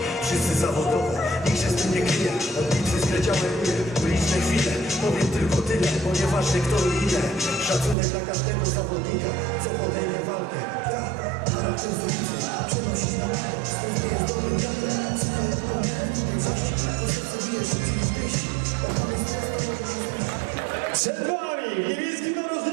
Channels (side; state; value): left; drops out; at 8.0 s